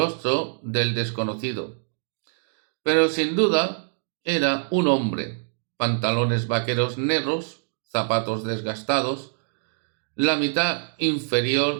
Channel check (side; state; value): left; silent; digital silence